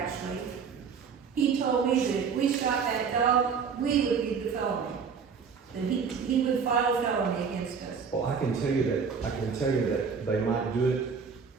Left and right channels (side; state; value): left; quieter; 6.0 dB